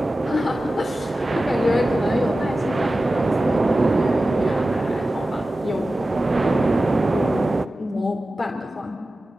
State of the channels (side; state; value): both; normal; correlation 0.94